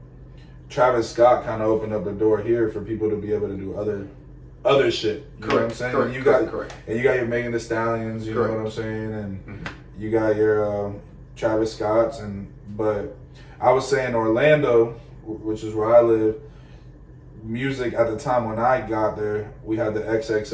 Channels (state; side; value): identical; both; correlation 1.00